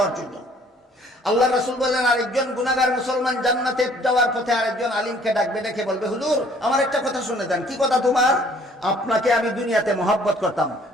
জন্য। আল্লাহ রাসূল বলেন, আরেকজন গুনাহগার মুসলমান জান্নাতে যাওয়ার পথে আরেকজন আলিমকে ডাকবে, ডেকে বলবে, হুজুর আমার একটা কথা শুনে দেন। কি কথা তোমার? আপনাকে আমি দুনিয়াতে মহব্বত করতাম,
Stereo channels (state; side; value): normal; both; correlation 0.58